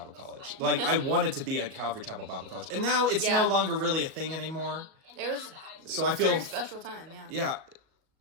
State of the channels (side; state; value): left; late; 37 ms